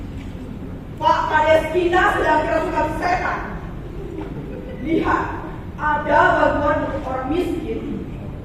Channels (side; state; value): both; identical; correlation 1.00